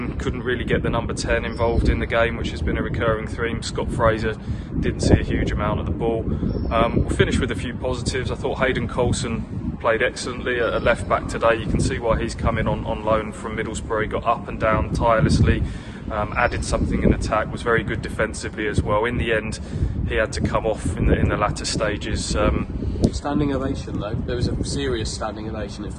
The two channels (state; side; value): identical; both; correlation 1.00